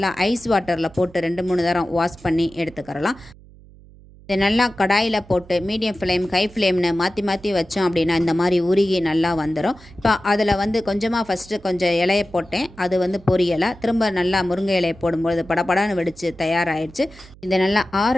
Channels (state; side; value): noise; right; hum, 23 dB below the sound